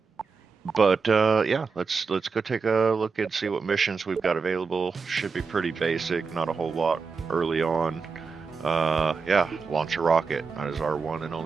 But yeah, let's go take a look and see what missions we've got available. Should be pretty basic, not a whole lot early on. Yeah, launch a rocket. That is our one and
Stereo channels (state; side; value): quieter; left; 5.0 dB